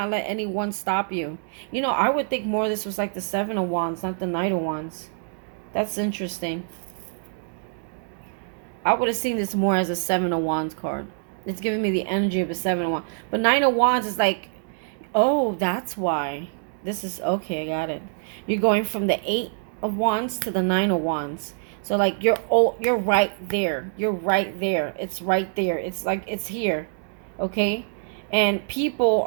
let anyone stop you. You know, I would think more of this was like the Seven of Wands, not the Knight of Wands. That's interesting. I would have seen this more as a Seven of Wands card. It's giving me the energy of a Seven of Wands. But Nine of Wands is like, oh, that's why. This is, okay, I got it. You're going from the Eight of Wands to the Nine of Wands. So like you're right there. You're right there. It's right there. It's like it's here. Okay? And people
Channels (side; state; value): left; silent; digital silence